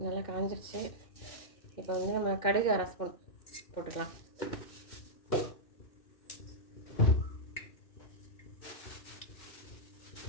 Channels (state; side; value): late; right; 2.6 ms